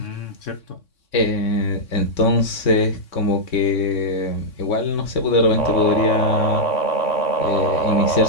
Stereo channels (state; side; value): late; right; 3.6 ms